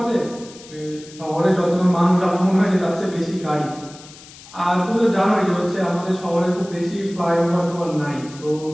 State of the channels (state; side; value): noise; left; hiss, 19 dB below the sound